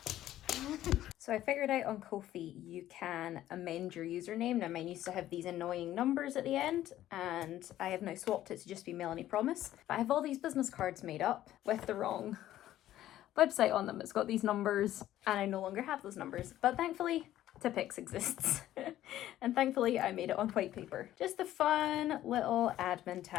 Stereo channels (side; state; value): right; quieter; 13.3 dB